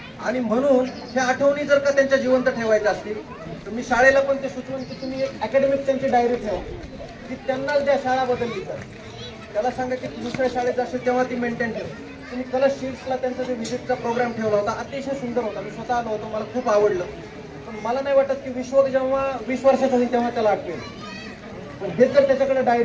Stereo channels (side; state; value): both; identical; correlation 1.00